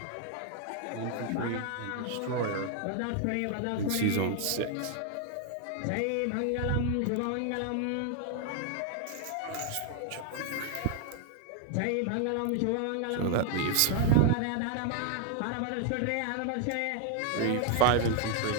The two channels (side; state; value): both; different; correlation 0.00